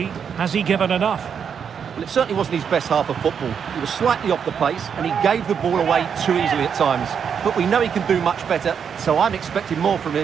Has he given enough? Well, it certainly wasn't his best half of football. He was slightly off the pace and he gave the ball away too easily at times. But we know he can do much better, so I'm expecting more from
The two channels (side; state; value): left; quieter; 7.2 dB